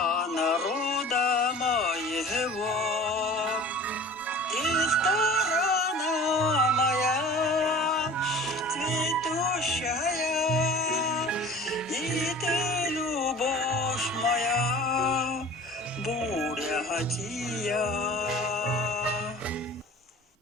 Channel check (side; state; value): both; normal; correlation 0.42